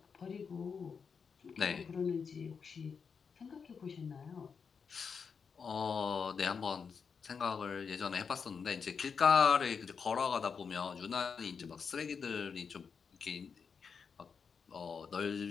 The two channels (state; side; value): quieter; right; 6.0 dB